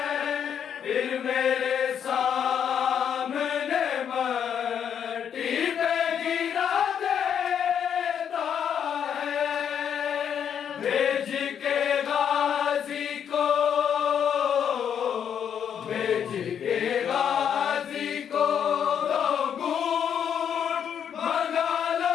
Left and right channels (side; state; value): right; quieter; 8.4 dB